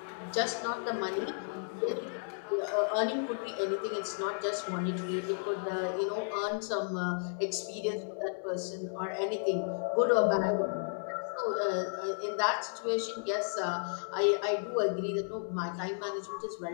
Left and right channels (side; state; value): right; silent; digital silence